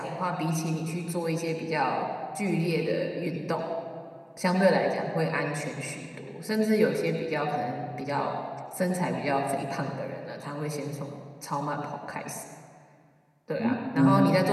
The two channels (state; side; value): identical; both; correlation 1.00